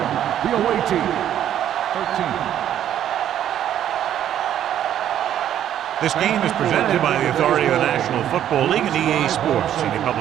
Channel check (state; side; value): quieter; left; 10.8 dB